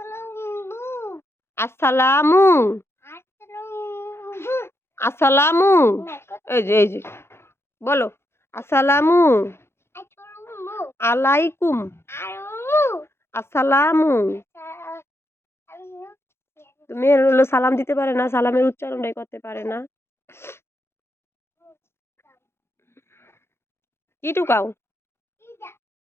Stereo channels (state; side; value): late; right; 0.12 ms